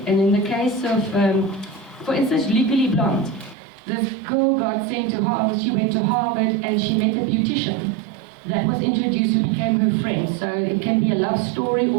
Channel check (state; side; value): drops out; left; at 3.6 s